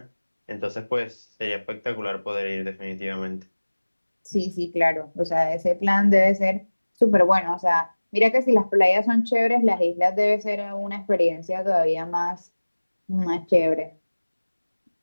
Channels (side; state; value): both; inverted; correlation -1.00